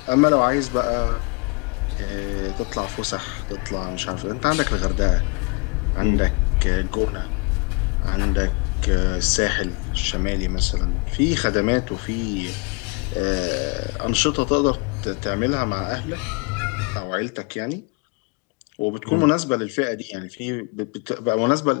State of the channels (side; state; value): right; quieter; 30.8 dB